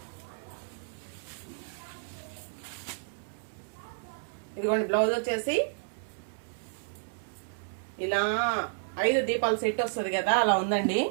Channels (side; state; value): left; silent; 57 dB below the other